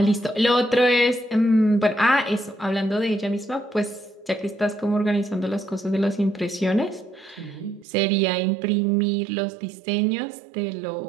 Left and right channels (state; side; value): drops out; left; at 7.9 s